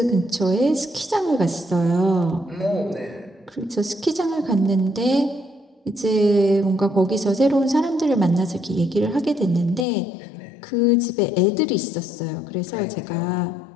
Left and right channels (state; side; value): drops out; right; at 9.9 s